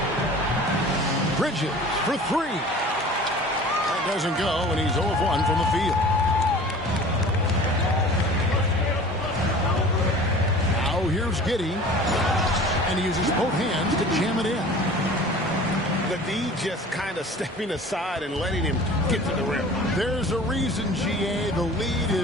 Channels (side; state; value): both; normal; correlation 0.43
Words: Bridges for 3. That doesn't go, and he's 0 of 1 from the field. Now here's Giddey. And he uses both hands to jam it in. The D just kind of stepping aside and letting him get to the rim. There's a reason, GA. The lead